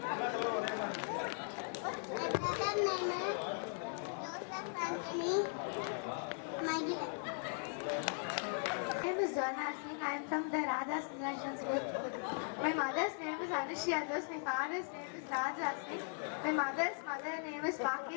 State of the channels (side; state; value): right; silent; 52 dB below the other